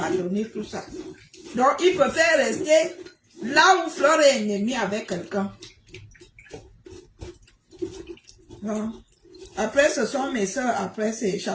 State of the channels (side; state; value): both; identical; correlation 1.00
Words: tout ça. Donc, ils préfèrent rester là où Flore est ennemie avec quelqu'un. Après, ce sont mes soeurs. Après,